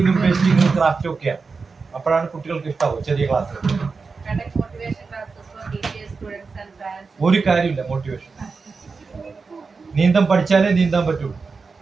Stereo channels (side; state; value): left; quieter; 4.6 dB